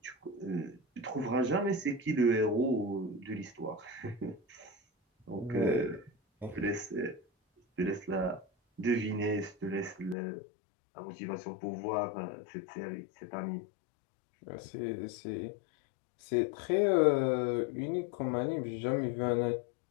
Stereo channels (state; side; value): drops out; right; at 10.2 s